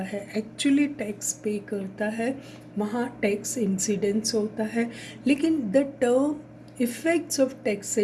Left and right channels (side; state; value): both; identical; correlation 1.00